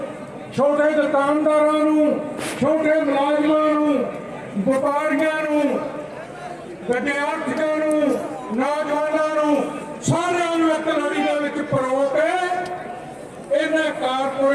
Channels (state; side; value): identical; both; correlation 1.00